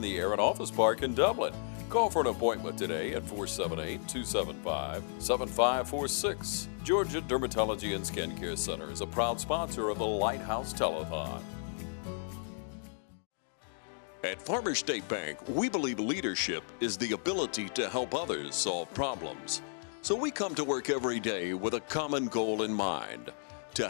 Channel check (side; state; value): right; silent; digital silence